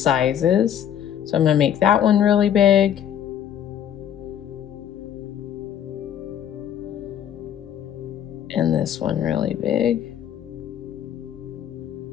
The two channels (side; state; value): right; quieter; 9.8 dB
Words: So I'm going to make that one really big. And this one really big.